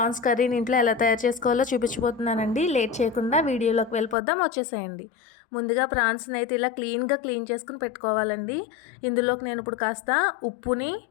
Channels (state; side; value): drops out; right; at 4.2 s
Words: కర్రీని ఇంట్లో ఎలా తయారు చేసుకోవాలో చూపించబోతున్నానండి. లేట్ చేయకుండా వీడియోలోకి వెళ్ళిపోద్దాం, వచ్చేసేయండి. ముందుగా ప్రాన్స్ని అయితే ఇలా క్లీన్ చేసుకుని పెట్టుకోవాలండి. ఇందులోకి నేను ఇప్పుడు కాస్త ఉప్పుని